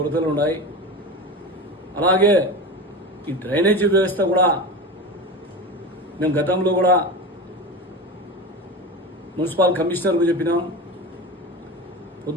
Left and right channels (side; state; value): both; normal; correlation 0.26